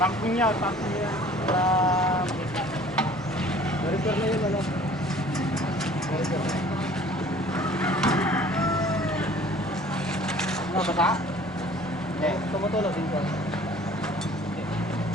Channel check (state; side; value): normal; both; correlation 0.50